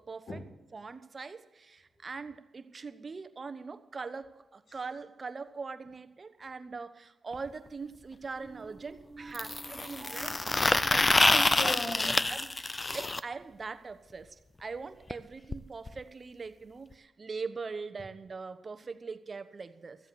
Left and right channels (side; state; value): both; normal; correlation 0.95